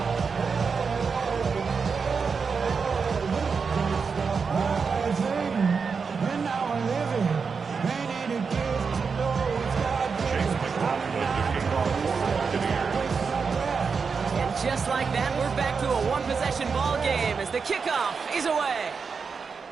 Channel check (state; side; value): quieter; left; 5.4 dB